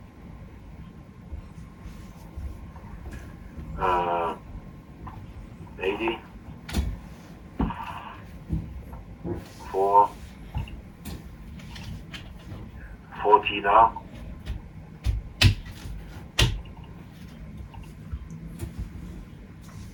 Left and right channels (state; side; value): identical; both; correlation 1.00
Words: Uh, 80, 4, 40 now.